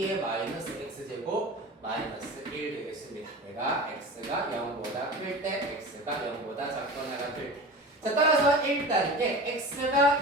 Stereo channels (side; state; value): both; normal; correlation 0.33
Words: 마이너스 x제곱 마이너스 1 되겠습니다. 내가 x가 0보다 클 때, x가 0보다 작거나 같을 때. 자, 따라서 1단계 x가